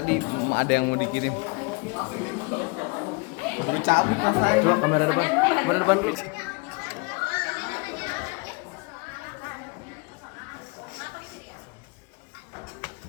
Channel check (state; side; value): quieter; right; 30.1 dB